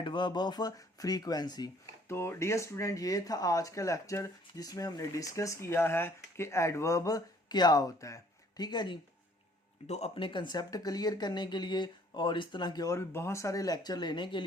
ऑफ फ्रीक्वेंसी। तो डियर स्टूडेंट, ये था आज का लेक्चर जिसमें हमने डिस्कस किया है कि एडवर्ब क्या होता है, ठीक है जी। तो अपने कंसेप्ट क्लियर करने के लिए और इस तरह के और भी बहुत सारे लेक्चर लेने के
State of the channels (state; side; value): normal; both; correlation 0.59